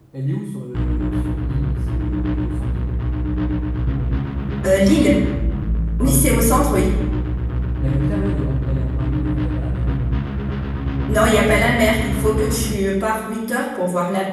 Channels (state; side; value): identical; both; correlation 1.00